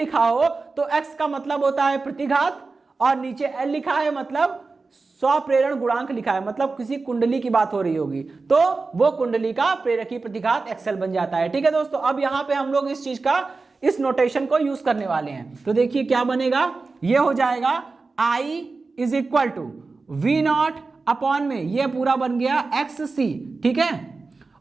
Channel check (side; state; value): left; quieter; 4.0 dB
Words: हो तो X का मतलब होता है प्रतिघात और नीचे L लिखा है मतलब स्वप्रेरण गुणांक लिखा है, मतलब किसी कुंडली की बात हो रही होगी तो वो कुंडली का प्रेरकी प्रतिघात XL बन जाता है। ठीक है दोस्तों, अब यहां पे हम लोग इस चीज का, इस नोटेशन को यूज करने वाले हैं। तो देखिए क्या बनेगा, ये हो जाएगा I is equal to V0 upon में ये पूरा बन गया XC। ठीक है,